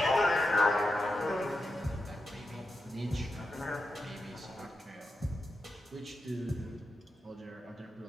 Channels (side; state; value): both; normal; correlation 0.89